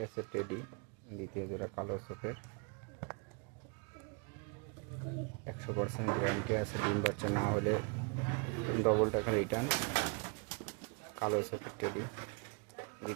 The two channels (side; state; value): left; quieter; 34.7 dB